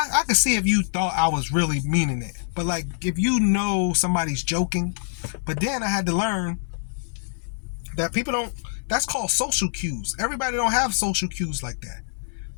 see if you thought I was really meaning it. But like if you know somebody's joking, but then I had to learn that people don't, that's called social cues. Everybody don't have social cues like that.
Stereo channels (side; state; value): right; silent; 62 dB below the other